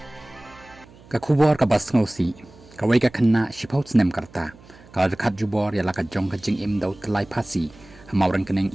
Ka khubor ka bas ngosi Kawei ka Khynnah shipau Snem karta ka rekat jubor ya la ka jong ka jing im dau tlai Phasi hamauran keneng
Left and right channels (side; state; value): right; noise; hum, 24 dB below the sound